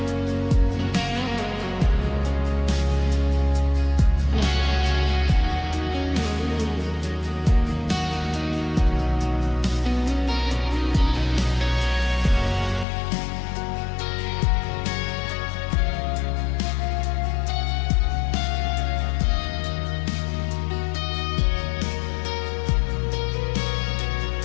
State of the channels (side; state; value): right; drops out; at 12.9 s